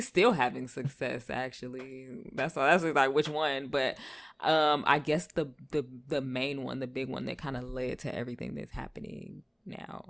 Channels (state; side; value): identical; both; correlation 1.00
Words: still having success, actually. That's like which one. But I guess the main one, the big one that kind of led to everything that's happening